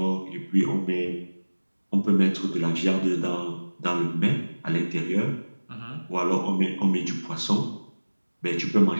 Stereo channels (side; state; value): both; inverted; correlation -1.00